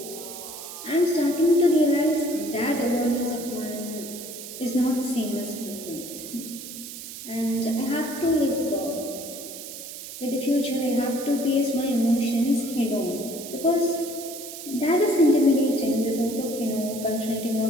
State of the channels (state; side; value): noise; right; hiss, 11 dB below the sound